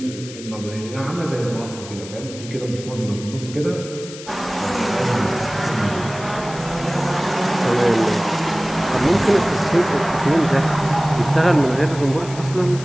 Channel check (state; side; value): noise; left; hiss, 15 dB below the sound